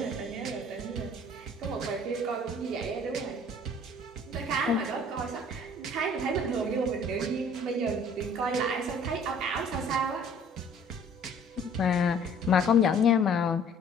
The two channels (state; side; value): normal; both; correlation 0.54